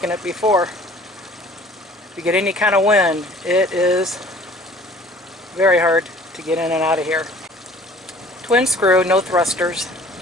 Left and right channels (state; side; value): normal; both; correlation 0.51